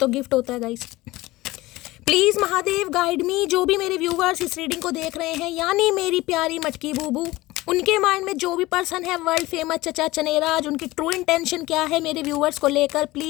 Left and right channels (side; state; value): right; quieter; 19.1 dB